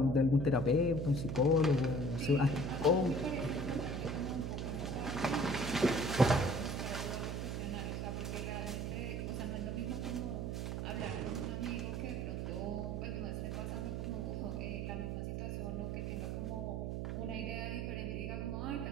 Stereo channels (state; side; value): noise; right; hum, 2 dB below the sound